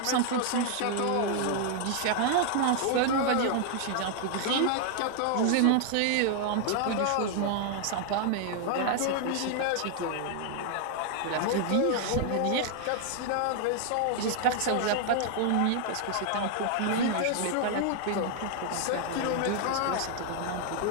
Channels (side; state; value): both; different; correlation 0.00